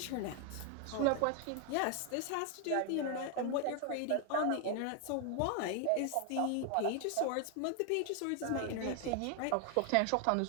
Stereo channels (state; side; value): different; both; correlation 0.00